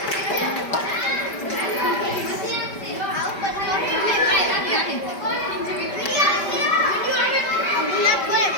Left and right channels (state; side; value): late; right; 5.1 ms